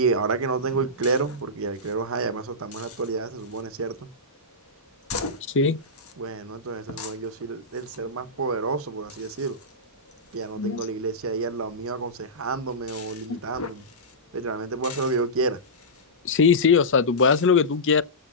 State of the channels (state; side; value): normal; both; correlation -0.15